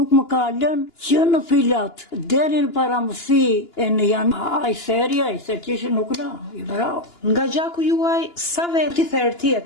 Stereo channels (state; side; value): late; right; 2.9 ms